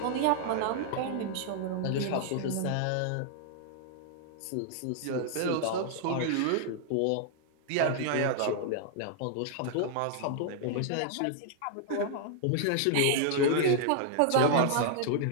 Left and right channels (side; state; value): both; different; correlation -0.01